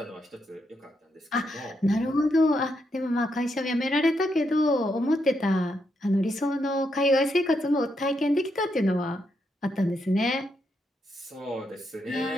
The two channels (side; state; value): both; normal; correlation 0.80